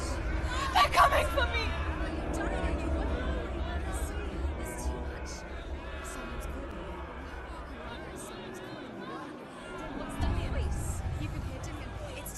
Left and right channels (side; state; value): both; identical; correlation 1.00